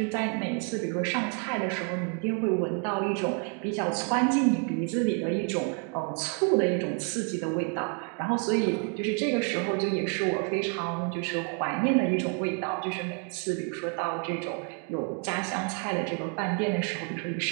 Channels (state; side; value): quieter; left; 37.9 dB